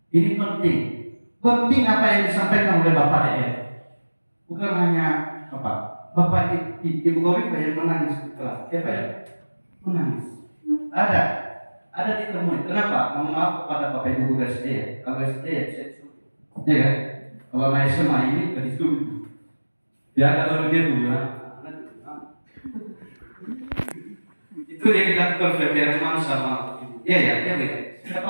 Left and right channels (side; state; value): both; inverted; correlation -1.00